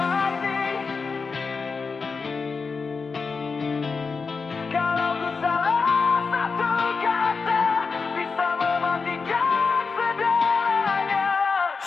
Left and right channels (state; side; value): quieter; right; 4.8 dB